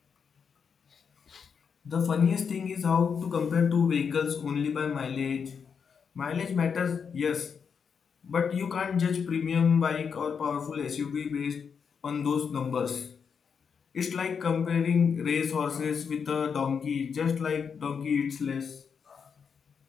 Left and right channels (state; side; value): quieter; right; 6.4 dB